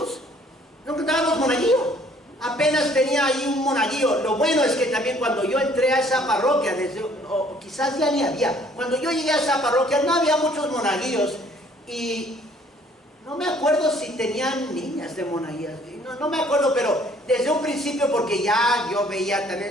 apenas tenía ahí un monaguillo. Lo bueno es que también cuando yo entré a esa parroquia, o quizás ya ni había, cuando yo llegué a esa parroquia no había muchos monaguillos y no me acuerdo si tenían niñas de monaguillas, no me acuerdo, pero desde un principio, porque ya yo veía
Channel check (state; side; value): normal; both; correlation 0.59